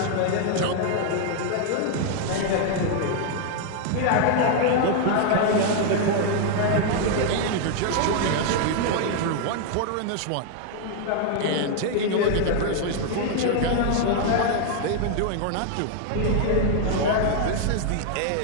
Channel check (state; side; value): different; both; correlation 0.00